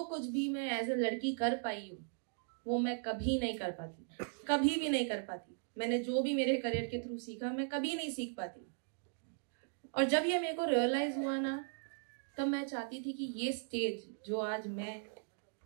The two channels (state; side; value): silent; left; digital silence